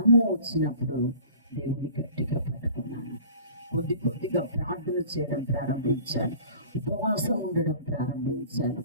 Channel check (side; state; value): both; inverted; correlation -0.46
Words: వచ్చినప్పుడు దేవుని గట్టిగా పట్టుకున్నాను. కొద్దిగా ప్రార్థన చేయడం ప్రారంభించాను, ఉపవాసం ఉండడం ప్రారంభించాను.